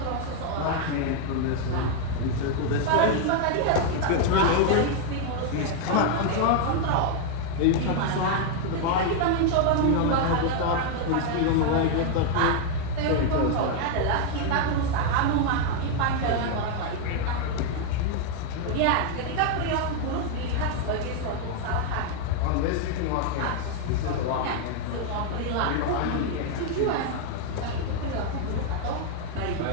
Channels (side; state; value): both; different; correlation 0.00